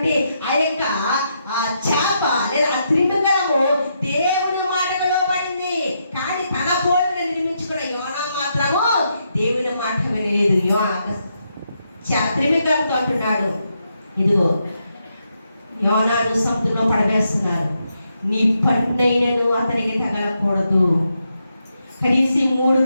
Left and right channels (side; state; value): both; inverted; correlation -0.81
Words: ఆ యొక్క చేప లేదా ఆ త్రిమింగళము దేవుడి మాటకు లోబడింది. కానీ తన పోలిని నిర్మించుకున్న యోనా మాత్రము దేవుని మాట వినలేదు. త్రిమింగళంతో అంటున్నాడు, ఇదిగో యోనాను సముద్రంలో పడవేస్తున్నారు, నీ పన్నైనను అతనికి తగలకూడదు. కనీసం 3